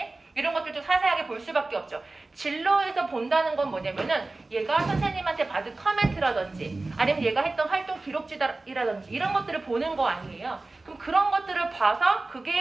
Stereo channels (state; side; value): quieter; left; 3.2 dB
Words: 이런 것들도 자세하게 볼 수밖에 없죠. 진로에서 본다는 건 뭐냐면은 얘가 선생님한테 받은 커멘트라든지 아니면 얘가 했던 활동 기록지라든지 이런 것들을 보는 거 아니에요. 그럼 그런 것들을 봐서